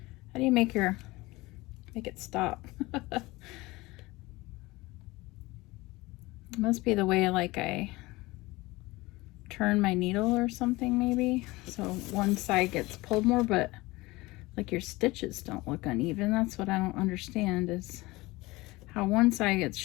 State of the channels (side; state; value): right; quieter; 21.2 dB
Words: it stop? It must be the way like I turn my needle or something maybe. So one side gets pulled more, but like your stitches don't look uneven. That's what I don't understand, is how one side gets